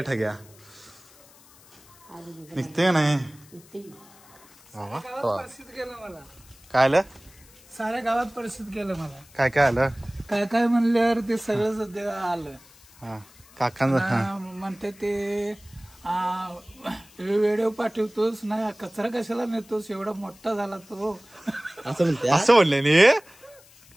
ठग्या निघते का नाही. परिस्थिती केलं मला. काय आलं साऱ्या गावात परिस्थिती केलं मला. काय आलं. काय म्हणल्यावर ते सगळं सध्या आलं. हा काकांचं म्हणते ते व्हिडिओ पाठवतोस ना कचरा कशाला नेतोस एवढा मोठा झाला तो असं म्हणले नी.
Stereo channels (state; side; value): noise; left; hiss, 25 dB below the sound